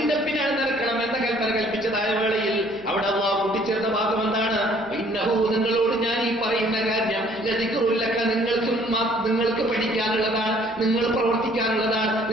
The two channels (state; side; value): noise; right; hum, 26 dB below the sound